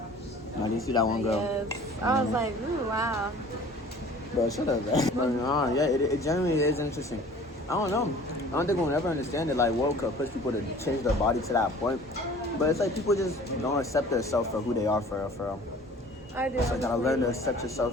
you see that one girl? Yes. I was like, ooh, wow. Bro, shut up, man. But, yeah, it genuinely is interesting. I don't know. I don't think we'll ever understand it. Like, what could push people to change their body to that point? But it's like people just don't accept themselves for who they are, for real. I do. So you gotta learn to accept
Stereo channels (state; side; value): normal; both; correlation 0.47